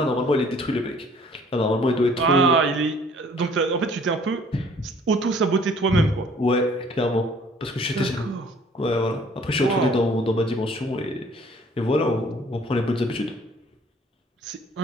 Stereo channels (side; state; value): both; normal; correlation 0.56